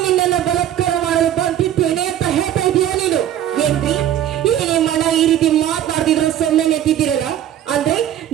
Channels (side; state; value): left; quieter; 11.3 dB